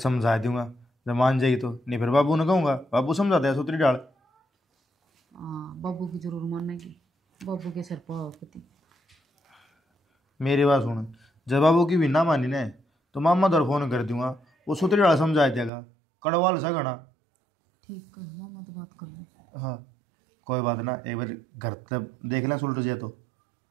दूंगा, जब मान जाएगी तो। नहीं फिर बाबू ने कहूँगा, बाबू समझा दे सूत्री डाल। हाँ बाबू की जरूर मानेगी, बाबू के सर पाव पति। मेरी बात सुन, जब बाबू की भी ना मानी ने तो मामा दर फोन कर दूंगा, वो सूत्री डाल समझा देगा, कड़वाल सा घना। ठीक है मामा तो बात कर लो। हाँ कोई बात ना, एक बार घर तक देख लें सुलट जाए तो।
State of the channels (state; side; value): drops out; left; at 15.7 s